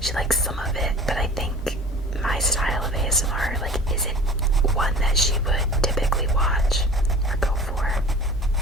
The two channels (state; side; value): normal; both; correlation 0.41